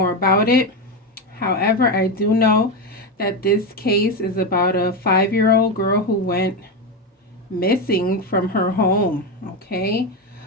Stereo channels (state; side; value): normal; both; correlation 0.13